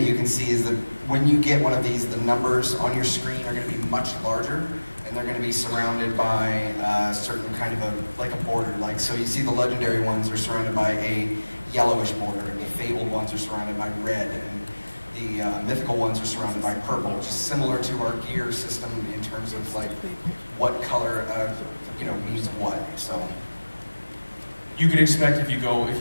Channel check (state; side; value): inverted; both; correlation -1.00